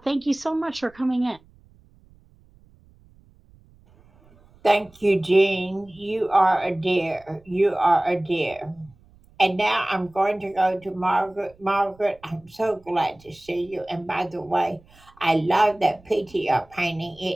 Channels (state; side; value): noise; right; rumble, 28 dB below the sound